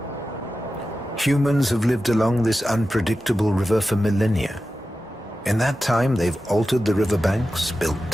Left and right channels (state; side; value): normal; both; correlation 0.93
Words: Humans have lived along this unpredictable river for millennia. In that time, they've altered the riverbanks, built